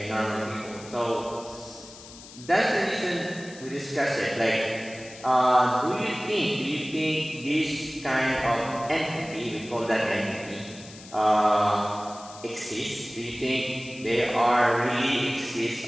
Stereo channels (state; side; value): noise; left; hiss, 18 dB below the sound